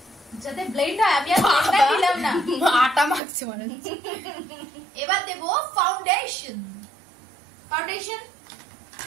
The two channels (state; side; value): drops out; left; at 3.2 s